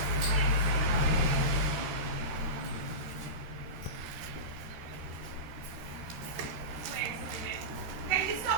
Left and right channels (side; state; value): left; late; 13 ms